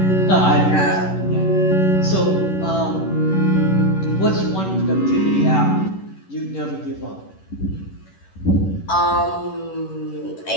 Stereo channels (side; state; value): right; late; 11 ms